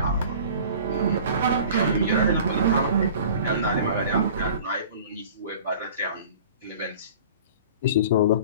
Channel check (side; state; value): both; inverted; correlation -0.43